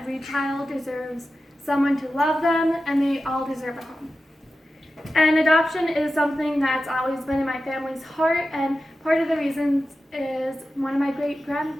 child deserves someone to love them, and they all deserve a home. And adoption is something that's always been in my family's heart, and part of the reasons is one of my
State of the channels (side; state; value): both; normal; correlation 0.92